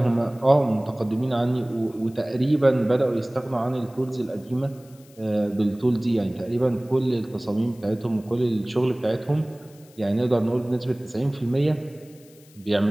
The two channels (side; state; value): left; noise; hiss, 27 dB below the sound